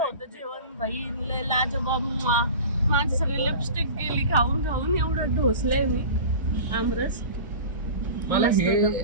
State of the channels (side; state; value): both; inverted; correlation -0.35